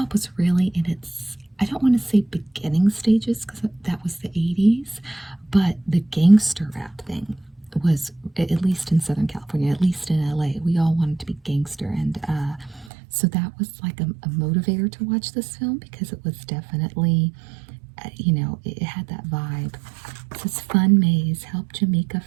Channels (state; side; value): drops out; left; at 12.9 s